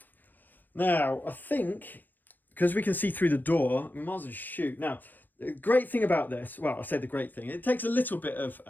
Now, I think, because we can see through the door, we might as well shoot. Now, the great thing about this, well, I say the great thing, it takes a little bit of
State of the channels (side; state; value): right; late; 0.090 ms